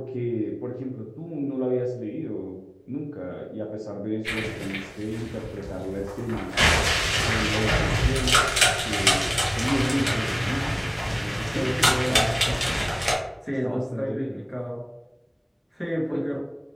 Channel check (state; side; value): identical; both; correlation 1.00